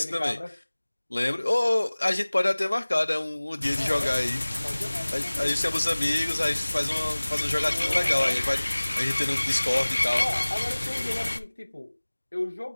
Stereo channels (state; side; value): inverted; both; correlation -1.00